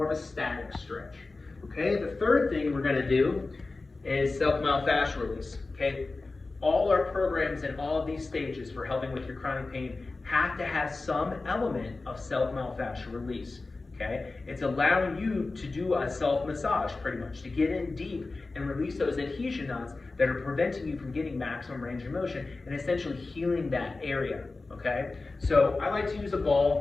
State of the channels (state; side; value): quieter; right; 3.5 dB